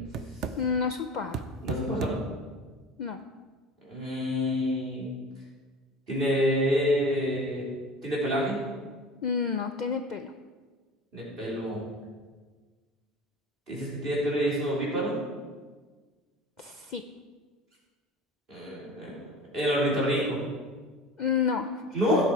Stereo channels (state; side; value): normal; both; correlation 0.37